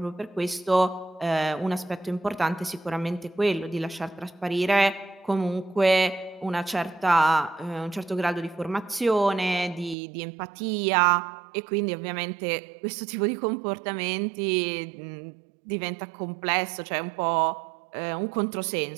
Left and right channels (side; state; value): left; drops out; at 10.0 s